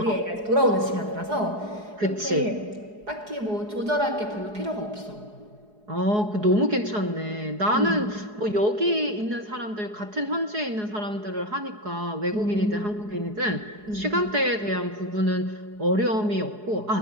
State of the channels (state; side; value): late; left; 4.8 ms